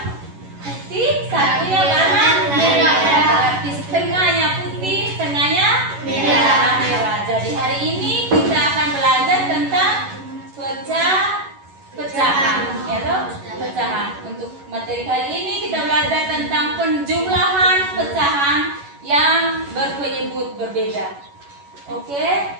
putih, satunya warna merah. Berarti setengahnya putih, setengahnya merah. Jadi hari ini kita akan belajar tentang pecahan, ya toh? Pecahan. Untuk materi kali ini kita belajar tentang penjumlahan pecahan yang berpenyebut berbeda. Oke,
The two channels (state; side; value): late; left; 11 ms